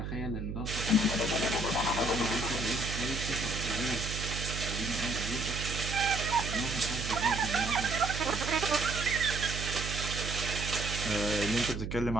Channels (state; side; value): noise; right; hum, 5 dB below the sound